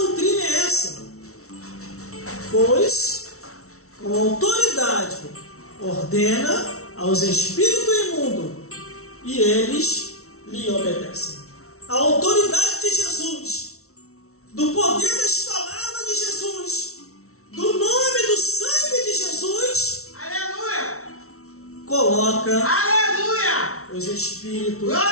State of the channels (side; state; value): right; late; 0.63 ms